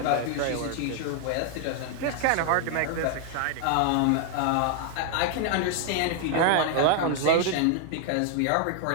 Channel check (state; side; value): different; both; correlation 0.00